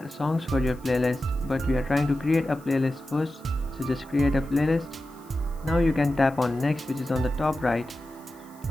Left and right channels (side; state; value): left; noise; hiss, 27 dB below the sound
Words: songs for your playlist, but we are trying to create a playlist first, so just create a playlist. Now you can tap on next, which is on the top right.